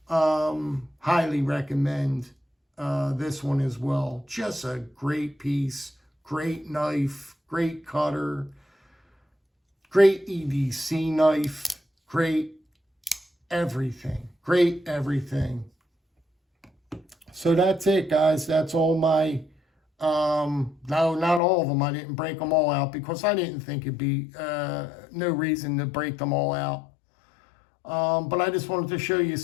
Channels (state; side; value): drops out; right; at 21.4 s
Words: Highly recommend this one as well. Just a great piece, great knife, great cutter, great EDC knife, great everything, great everything. So that's it, guys. That's all my, no, not all of them. I didn't break them all out because I didn't think it'd be no reason to break them all out. But I just wanted to show you